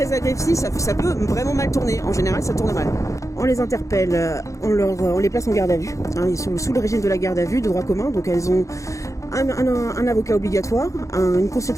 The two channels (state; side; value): late; right; 0.15 ms